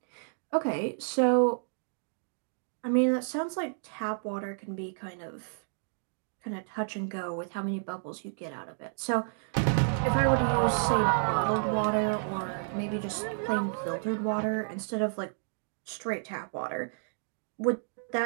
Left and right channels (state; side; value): silent; left; digital silence